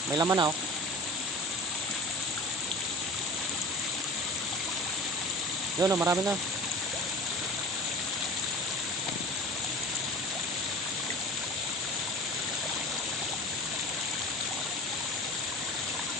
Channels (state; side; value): normal; both; correlation 0.39